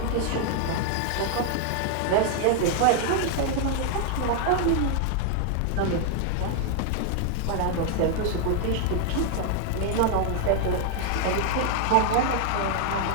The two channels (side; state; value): both; different; correlation 0.00